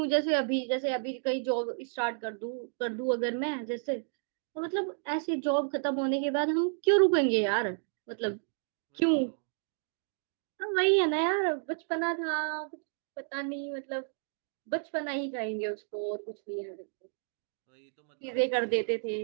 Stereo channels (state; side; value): silent; left; digital silence